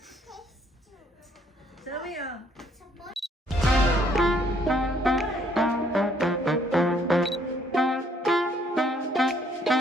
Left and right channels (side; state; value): both; normal; correlation 0.66